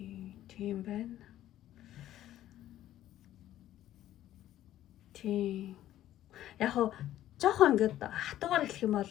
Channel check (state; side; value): quieter; right; 13.0 dB